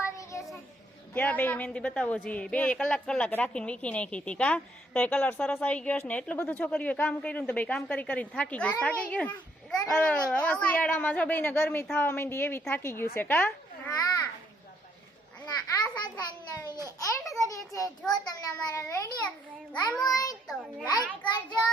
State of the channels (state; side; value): normal; both; correlation 0.70